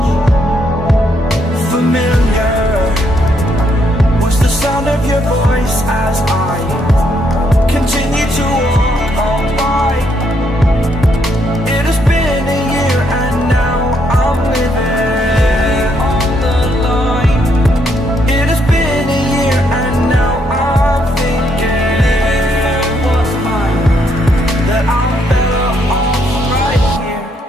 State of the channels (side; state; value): both; normal; correlation 0.74